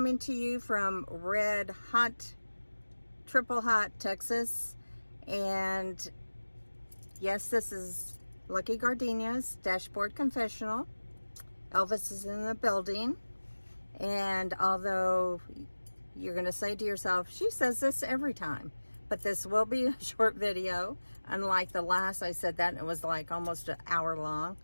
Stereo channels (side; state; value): both; inverted; correlation -1.00